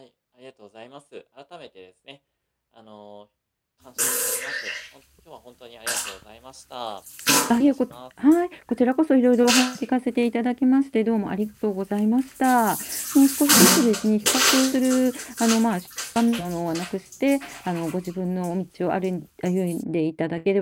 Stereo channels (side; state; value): both; identical; correlation 1.00